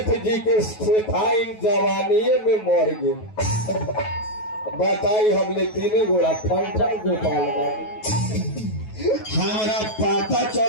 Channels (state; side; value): late; right; 9.3 ms